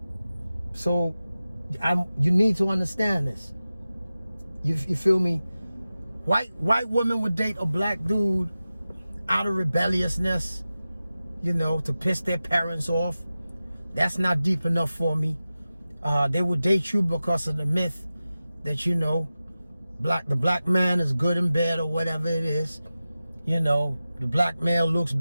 So you need to understand this. You feel me? White women would date a black dude out of rebelliousness, to piss their parents off. That's not deep enough for me. They would date you because of the myth that the black man is good in bed or whatever it is. The black male looks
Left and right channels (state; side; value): inverted; both; correlation -0.95